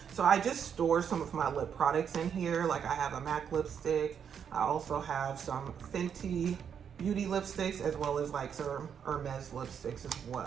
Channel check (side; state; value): left; quieter; 7.7 dB